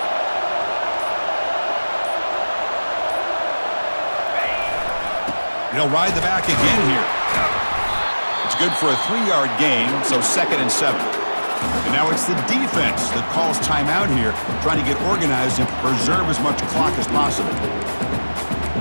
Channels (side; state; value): both; inverted; correlation -1.00